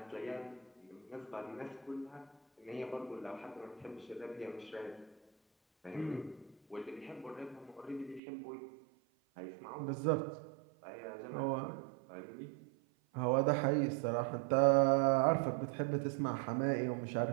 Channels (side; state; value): left; drops out; at 8.2 s